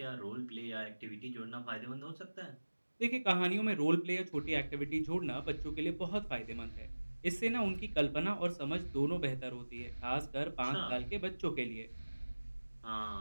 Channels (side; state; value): both; inverted; correlation -1.00